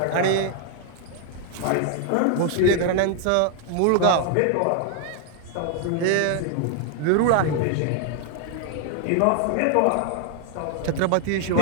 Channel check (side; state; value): both; different; correlation 0.00